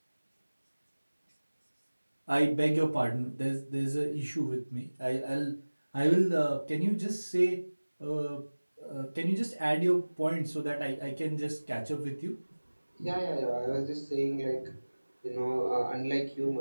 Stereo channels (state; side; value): inverted; both; correlation -1.00